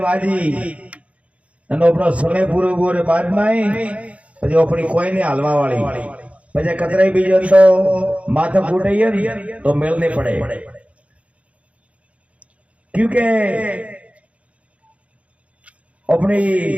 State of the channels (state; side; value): late; left; 0.064 ms